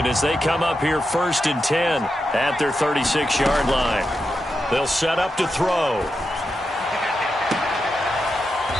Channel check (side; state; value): both; normal; correlation 0.87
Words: as they come up here 1st and 10 at their 36-yard line. They'll set up to throw.